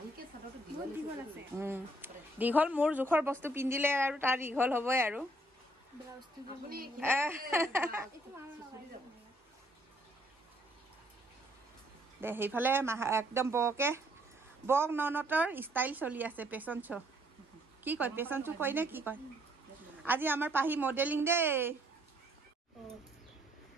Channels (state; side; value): normal; both; correlation 0.66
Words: দীঘল মোৰ জোখৰ বস্তু পিন্ধিলে আৰু তাৰ দীঘল হ'বই আৰু দে সেইফালে একদম বক ননতৰ ষ্টাইল চলি আছে পেচন শ্ব' কি কয় পেচন শ্ব' কয় নে কি কয় আজি আমাৰ পাহি মডেলিং দেই